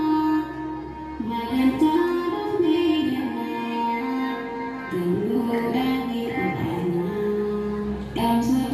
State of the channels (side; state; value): both; identical; correlation 1.00